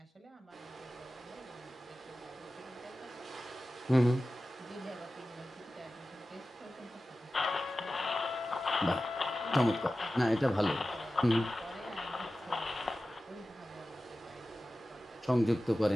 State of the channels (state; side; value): normal; both; correlation 0.95